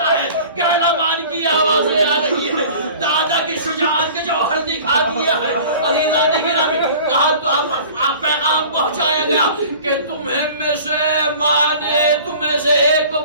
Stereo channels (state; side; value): inverted; both; correlation -0.44